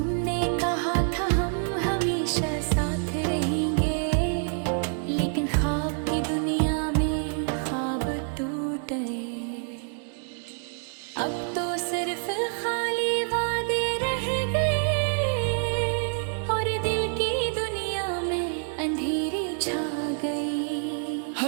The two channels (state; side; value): silent; left; 60 dB below the other